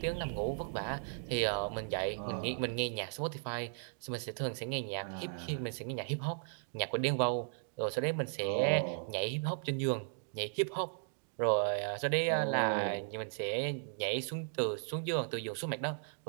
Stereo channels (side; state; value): left; silent; digital silence